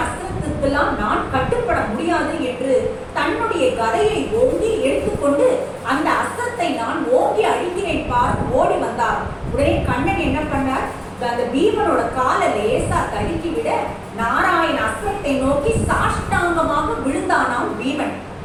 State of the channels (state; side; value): identical; both; correlation 1.00